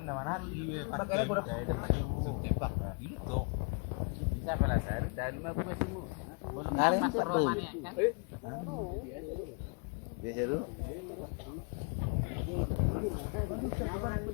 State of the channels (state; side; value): quieter; right; 34.1 dB